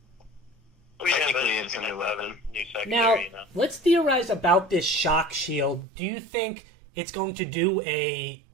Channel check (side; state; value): left; drops out; at 5.9 s